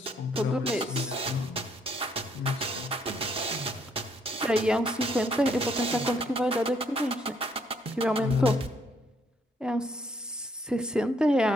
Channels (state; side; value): normal; both; correlation 0.69